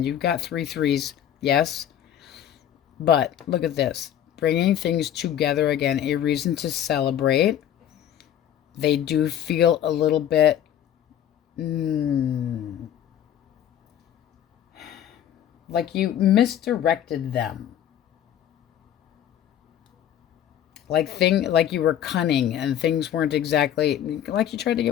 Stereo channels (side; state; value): right; quieter; 10.5 dB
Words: You've got 3 threes. Yes. But look at this. Bringing things together again. A reason to celebrate. They do feel a little bit like you misdirected them. Like you were cunning and things weren't exactly like you tried to